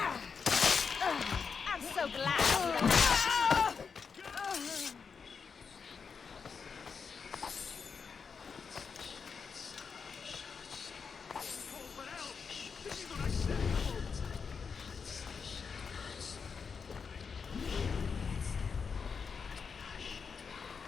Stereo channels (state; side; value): quieter; right; 5.7 dB